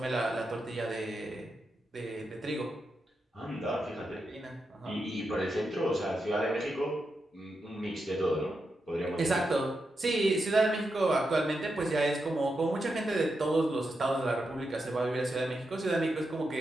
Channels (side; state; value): both; normal; correlation 0.86